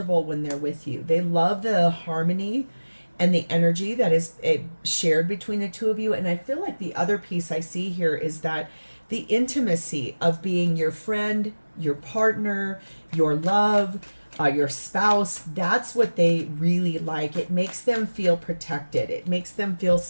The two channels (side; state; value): both; inverted; correlation -1.00